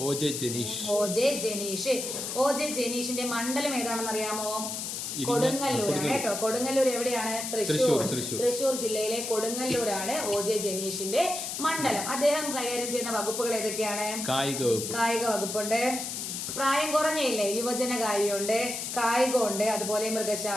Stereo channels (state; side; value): noise; left; hiss, 4 dB below the sound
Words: ഒ ജെ ജനീഷിന്റെ മണ്ഡലം ഏതാണെന്ന് അറിയാമോ? കൊടുങ്ങല്ലൂരാണ് കേട്ടോ. കൊടുങ്ങല്ലൂർ എവിടെയാണ്? തൃശ്ശൂർ ജില്ലയിലെ കൊടുങ്ങല്ലൂരാണ് ഒ ജെ ജനീഷിന്റെ മണ്ഡലം. അദ്ദേഹം കൈകാര്യം ചെയ്യുന്ന വകുപ്പുകൾ ഏതൊക്കെയാണ്? കായിക വകുപ്പുണ്ട്, പ്രായം കുറഞ്ഞയില്ലേ, യുവജന കാര്യമുണ്ട്, കായികമുണ്ട്, അതുപോലെ